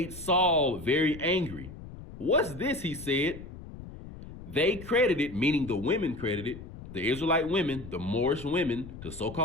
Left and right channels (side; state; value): left; noise; rumble, 14 dB below the sound